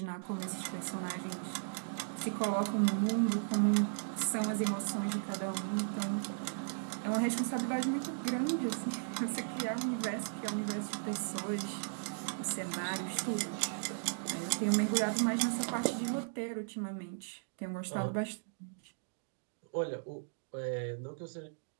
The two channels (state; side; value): silent; left; digital silence